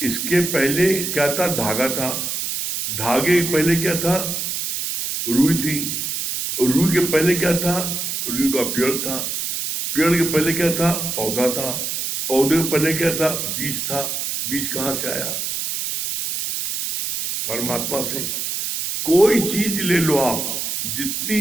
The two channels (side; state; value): right; noise; hiss, 3 dB below the sound